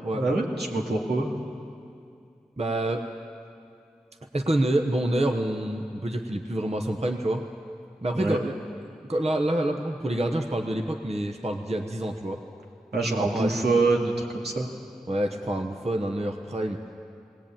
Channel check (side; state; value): both; normal; correlation 0.86